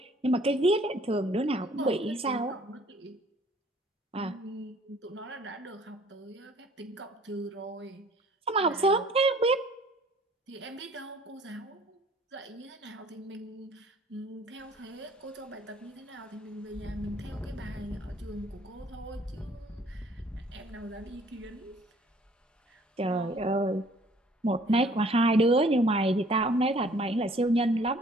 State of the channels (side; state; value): both; normal; correlation 0.57